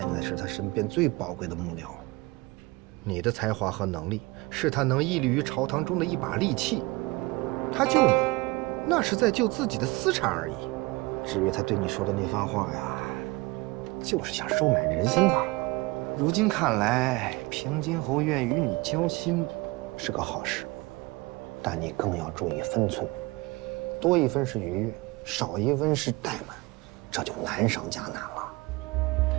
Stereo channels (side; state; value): left; quieter; 23.2 dB